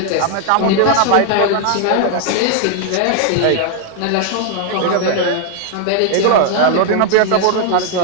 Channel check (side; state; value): both; different; correlation 0.00